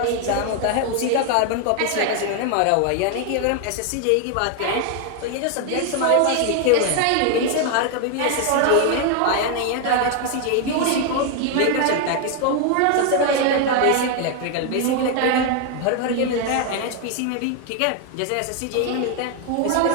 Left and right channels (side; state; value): both; different; correlation 0.01